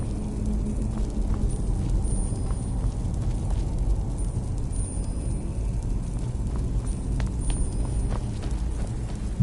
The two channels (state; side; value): identical; both; correlation 1.00